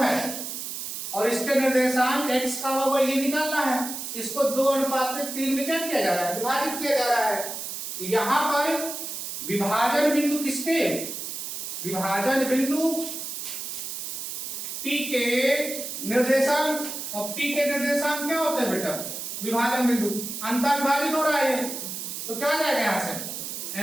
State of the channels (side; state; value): right; noise; hiss, 6 dB below the sound